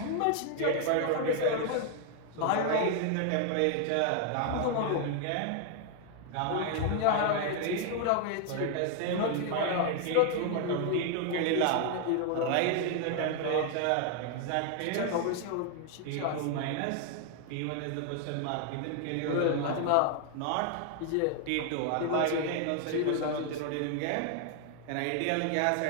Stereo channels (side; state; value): both; different; correlation 0.00